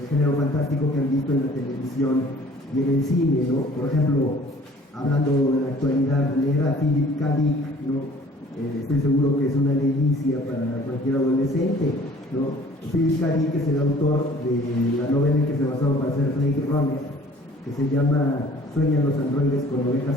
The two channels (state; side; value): normal; both; correlation 0.52